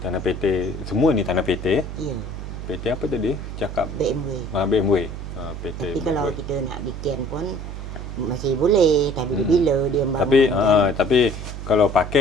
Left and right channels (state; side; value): noise; right; hum, 8 dB below the sound